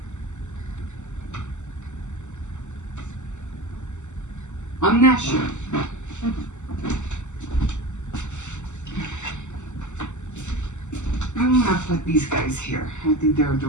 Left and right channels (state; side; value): late; right; 0.84 ms